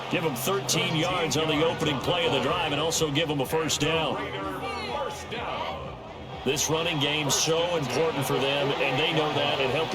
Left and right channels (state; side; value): identical; both; correlation 1.00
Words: Give him 13 yards on the opening play of the drive and also give him a 1st down. This running game's so important for them, and they know that. It helped